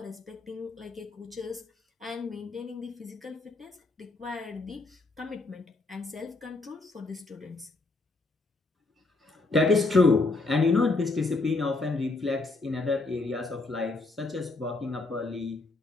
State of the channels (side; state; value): right; quieter; 3.4 dB